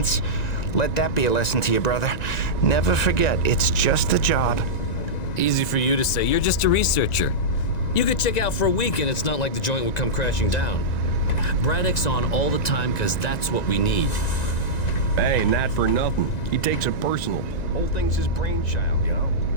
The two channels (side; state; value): right; late; 1.9 ms